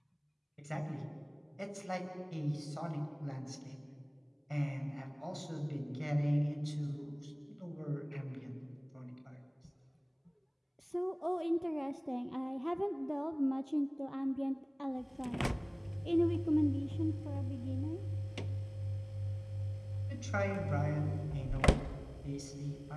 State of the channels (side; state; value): both; identical; correlation 1.00